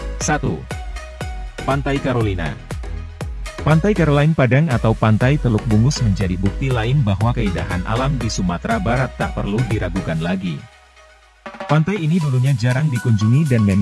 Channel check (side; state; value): both; identical; correlation 1.00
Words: 1. Pantai Carolina. Pantai Caroline Padang atau Pantai Teluk Bungus menjadi bukti lain bahwa keindahan alam di Sumatera Barat tak perlu diragukan lagi. Pantai ini dulunya jarang dikunjungi dan